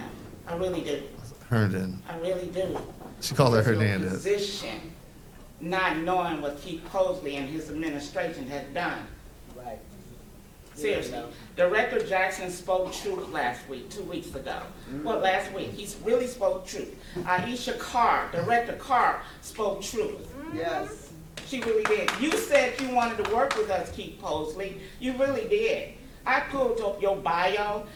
I really do. Herndon. I really do. She called her Because your Hernandez. position, not knowing what Keith Fosley and his administration has done. Right. Seriously. Director Jackson spoke truth last week, 2 weeks ago. Well, last week, he really spoke truth. Aisha Carr, Director Carr, spoke truth. Yes. She really did. You said you wanted to work with us, Keith Posley. You really did. I pulled up your bio.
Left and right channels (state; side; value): identical; both; correlation 1.00